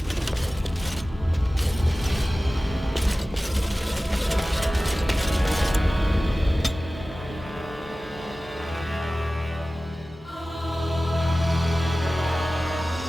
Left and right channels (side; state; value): both; normal; correlation 0.96